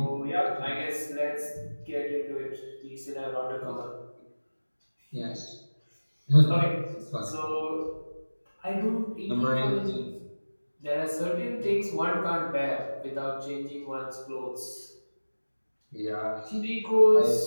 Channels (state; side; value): inverted; both; correlation -1.00